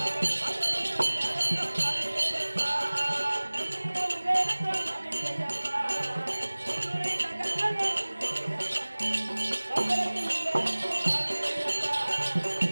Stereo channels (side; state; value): both; inverted; correlation -1.00